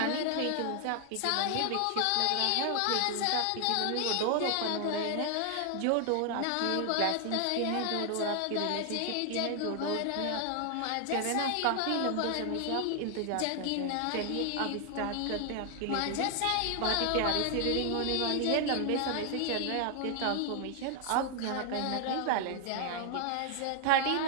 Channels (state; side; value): different; both; correlation 0.00